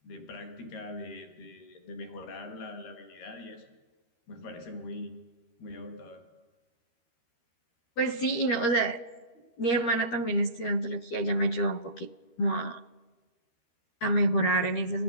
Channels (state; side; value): late; right; 13 ms